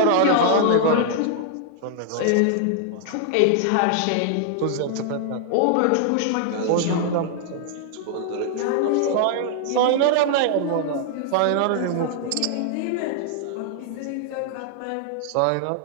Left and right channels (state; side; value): different; both; correlation 0.00